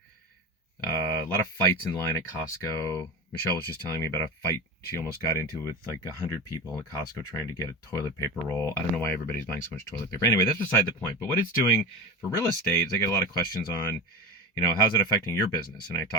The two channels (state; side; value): normal; both; correlation 0.24